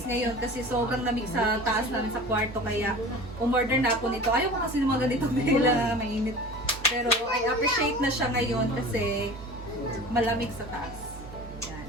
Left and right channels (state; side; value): normal; both; correlation 0.38